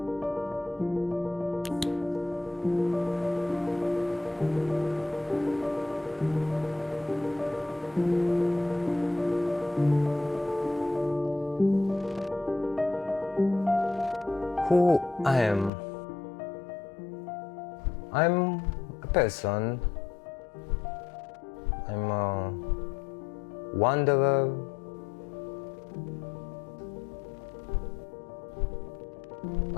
Who I am? I'm a person. I'm a wanderer.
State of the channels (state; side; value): drops out; right; at 15.7 s